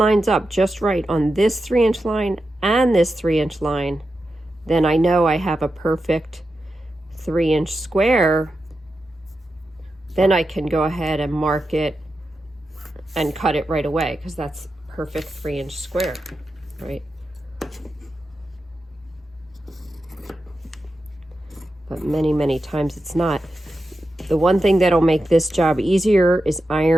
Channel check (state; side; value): normal; both; correlation 0.90